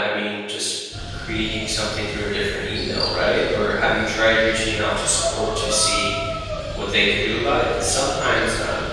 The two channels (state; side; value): identical; both; correlation 1.00